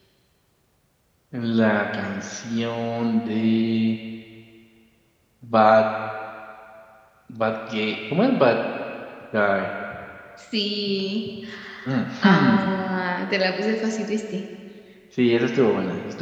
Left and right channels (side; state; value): both; identical; correlation 1.00